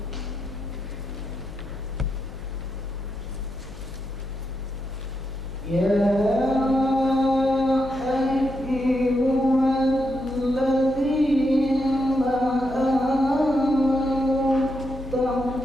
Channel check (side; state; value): left; noise; hum, 16 dB below the sound